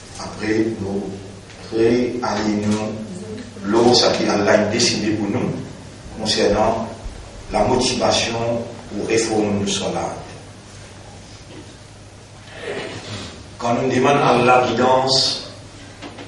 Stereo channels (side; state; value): both; identical; correlation 1.00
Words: Après, nous réalignons l'eau, ce qu'Allah a décidé pour nous, concernant la motivation pour réformer le Salat. Quand nous demandons à Allah guidance,